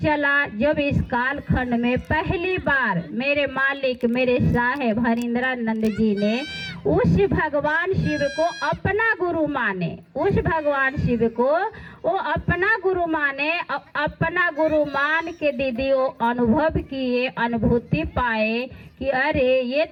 जब इस कालखंड में पहली बार मेरे मालिक मेरे साहेब हरिंद्रानंद जी ने उस भगवान शिव को अपना गुरु माने, उस भगवान शिव को वो अपना गुरु माने, अपना गुरु मान के दीदी वो अनुभव किए, अनुभूति पाए कि अरे ये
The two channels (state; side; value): identical; both; correlation 1.00